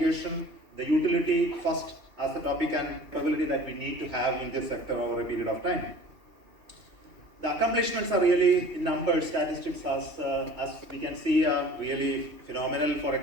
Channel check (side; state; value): left; late; 2.7 ms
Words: the utility first as the topic and capability that we need to have in this sector over a period of time. The accomplishments are really in numbers, statistics as we can see really phenomenal for a